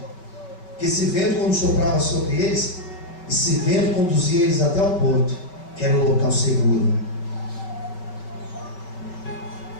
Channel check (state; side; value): late; right; 5.3 ms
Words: Porque esse vento, quando soprava sobre eles, esse vento conduzia eles até o porto, que era o local seguro.